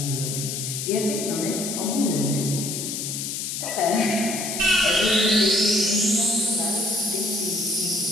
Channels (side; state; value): left; noise; hiss, 4 dB below the sound